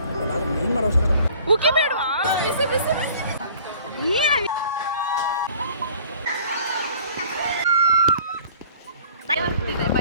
ಉಕ್ಕಿ ಬೇಡವಾ? ಬಿಸಿ ಬಿಸಿ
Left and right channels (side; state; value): both; inverted; correlation -0.51